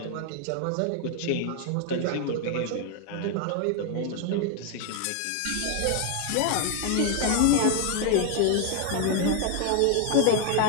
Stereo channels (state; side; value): different; both; correlation 0.01